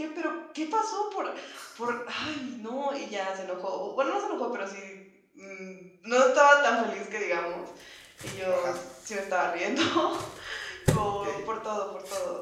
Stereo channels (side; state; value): both; identical; correlation 1.00